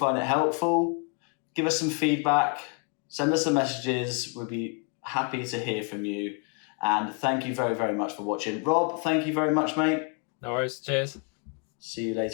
it helpful. Give us some feedback. Send us some messages. We'll be happy to hear from you. And thank you very, very much for watching. Rob, thank you very much, mate. No worries. Cheers. See you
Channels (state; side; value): quieter; right; 37.5 dB